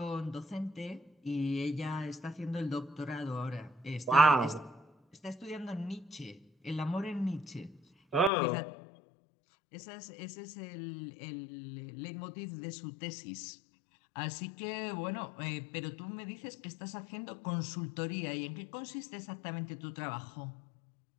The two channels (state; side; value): drops out; right; at 8.3 s